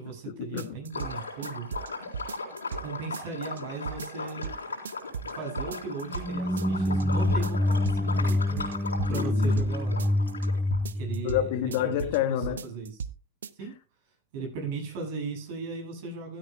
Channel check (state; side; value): normal; both; correlation 0.47